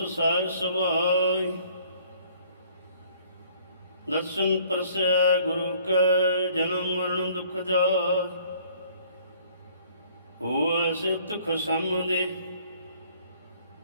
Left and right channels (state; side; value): inverted; both; correlation -0.57